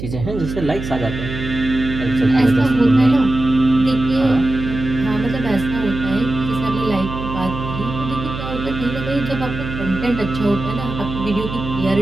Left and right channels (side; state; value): right; noise; hum, 8 dB below the sound